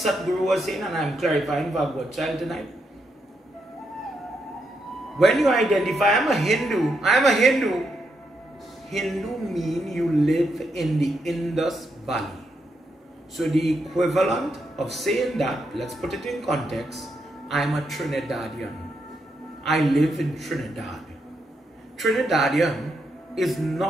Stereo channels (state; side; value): normal; both; correlation 0.81